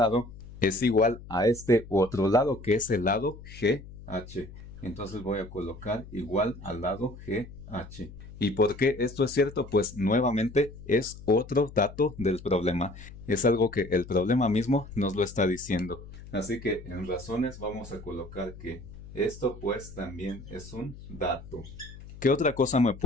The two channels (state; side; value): noise; left; hum, 16 dB below the sound